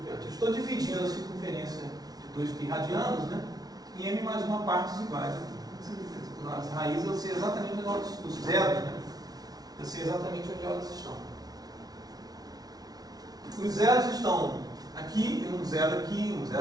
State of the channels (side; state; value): left; late; 0.19 ms